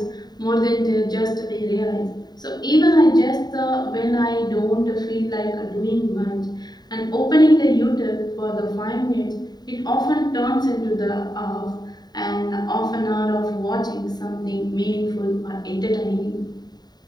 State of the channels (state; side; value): late; right; 0.20 ms